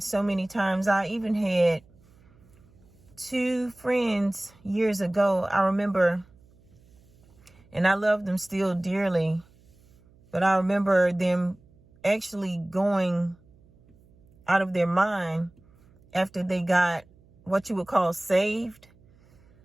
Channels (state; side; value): noise; right; hum, 29 dB below the sound